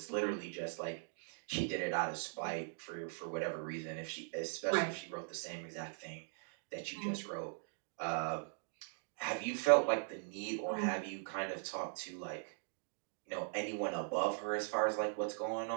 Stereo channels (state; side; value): silent; left; digital silence